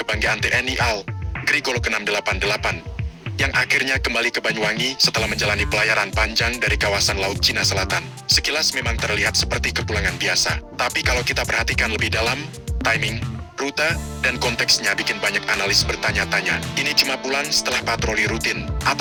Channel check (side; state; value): both; identical; correlation 1.00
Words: TNI AL, Grigolok 688, yang akhirnya kembali ke Banyuwangi setelah menjalani pelayaran panjang dari kawasan Laut Cina Selatan. Sekilas memang terlihat seperti kepulangan biasa, tapi kalau kita perhatikan lebih dalam, timing, rute, dan konteksnya bikin banyak analis bertanya-tanya. Ini cuma pulang setelah patroli rutin,